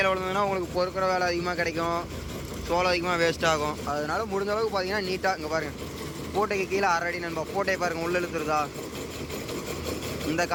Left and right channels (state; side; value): identical; both; correlation 1.00